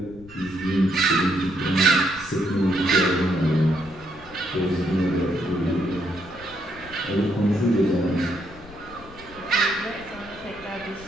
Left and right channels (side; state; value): left; noise; rumble, 20 dB below the sound